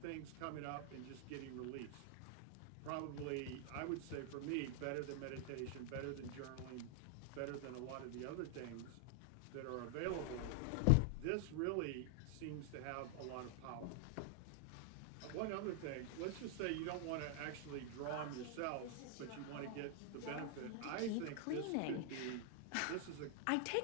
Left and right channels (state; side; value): different; both; correlation 0.00